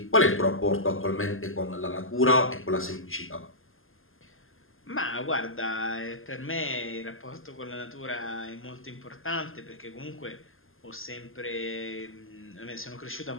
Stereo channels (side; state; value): right; late; 0.60 ms